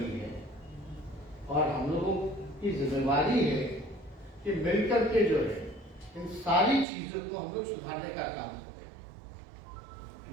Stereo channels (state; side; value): drops out; left; at 6.9 s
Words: है और हम लोगों की जिम्मेवारी है कि मिलकर के जो है इन सारी चीजों को हम लोग सुधारने का काम